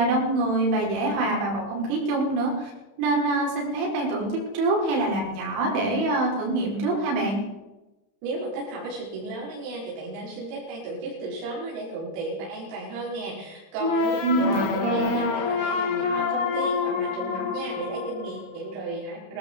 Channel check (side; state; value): left; late; 30 ms